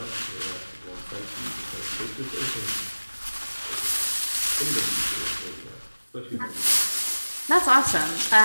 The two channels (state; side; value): inverted; both; correlation -1.00